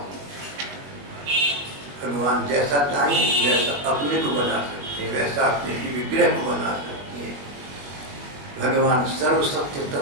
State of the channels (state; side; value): late; left; 21 ms